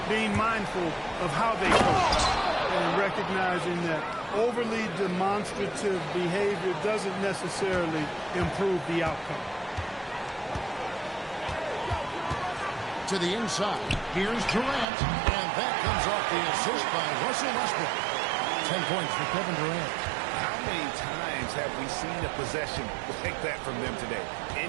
being mindful of how they coach and recognizing that overly demonstrative behavior doesn't necessarily improve the outcome. To the inside. Here's Durant. And that comes off the assist by Russell Westbrook. 10 points for Kevin Durant. How many times have we seen a possession like that from them today?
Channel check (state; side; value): drops out; left; at 14.9 s